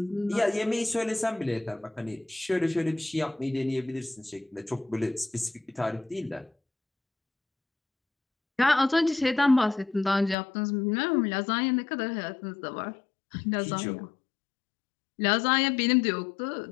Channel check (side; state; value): right; drops out; at 10.4 s